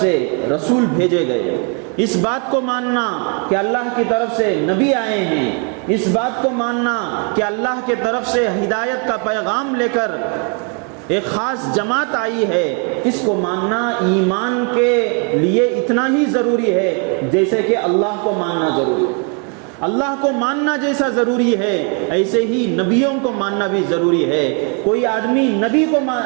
رسول بھیجے گئے، اس بات کو ماننا کہ اللہ کی طرف سے نبی آئے ہیں، اس بات کو ماننا کہ اللہ کی طرف سے ہدایت کا پیغام لے کر ایک خاص جماعت آئی ہے، اس کو ماننا ایمان کے لیے اتنا ہی ضروری ہے جیسے کہ اللہ کو ماننا ضروری ہے۔ اللہ کو ماننا جیسا ضروری ہے ایسے ہی نبیوں کو ماننا بھی ضروری ہے۔ کوئی آدمی نبی کو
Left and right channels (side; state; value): left; quieter; 37.2 dB